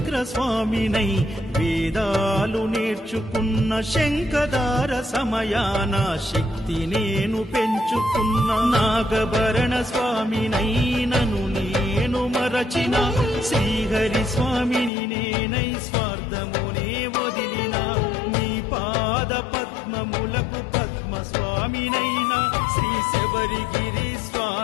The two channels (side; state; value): right; drops out; at 14.9 s